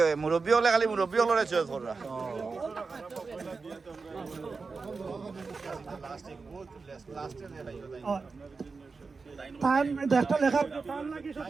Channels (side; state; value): left; quieter; 4.5 dB